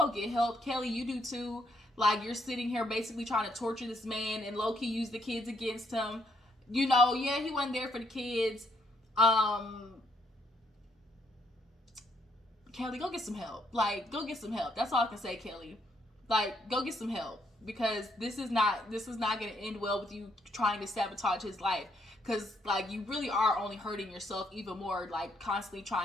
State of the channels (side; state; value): both; normal; correlation 0.72